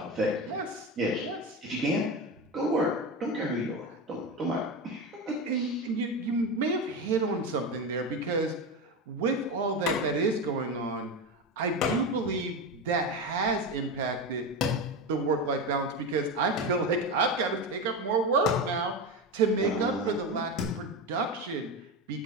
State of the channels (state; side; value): normal; both; correlation 0.19